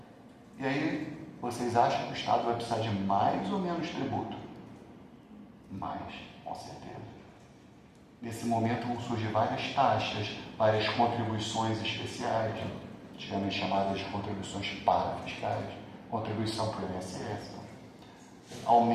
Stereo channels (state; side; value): identical; both; correlation 1.00